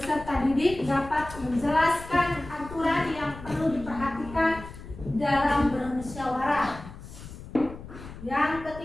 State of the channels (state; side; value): noise; left; rumble, 14 dB below the sound